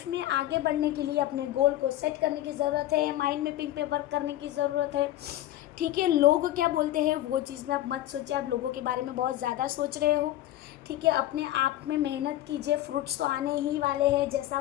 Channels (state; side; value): quieter; right; 14.1 dB